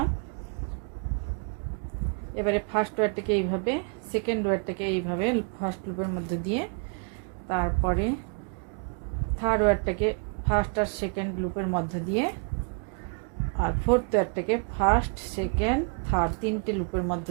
এবারে ফার্স্ট ওয়ারটাকে এইভাবে, সেকেন্ড ওয়ারটাকে এইভাবে ফার্স্ট লুপের মধ্যে দিয়ে, তারপরে থার্ড ওয়ারটাকে ফার্স্ট আর সেকেন্ড লুপের মধ্যে দিয়ে, আর ফোর্থ ওয়ারটাকে ফার্স্ট সেকেন্ড থার্ড 3টে লুপের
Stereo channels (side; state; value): left; quieter; 36.3 dB